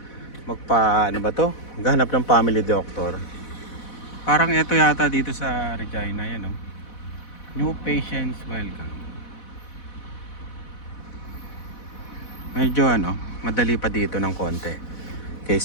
Magpa ano ba 'to? Maghanap ng family doctor. Parang ito yata dito sa Regina, yan oh. New patients welcome. Medyo ano, madali pa dito ng konti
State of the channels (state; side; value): late; right; 4.1 ms